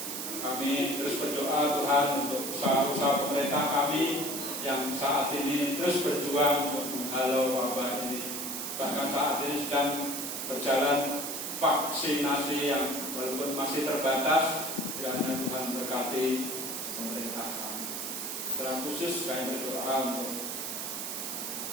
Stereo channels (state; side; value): noise; right; hiss, 4 dB below the sound